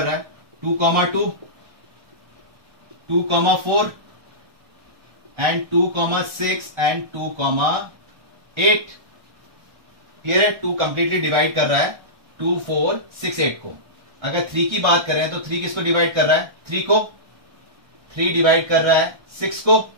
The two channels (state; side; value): late; left; 1.3 ms